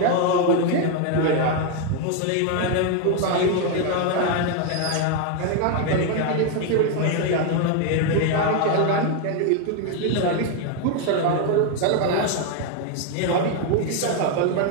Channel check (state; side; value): different; both; correlation 0.01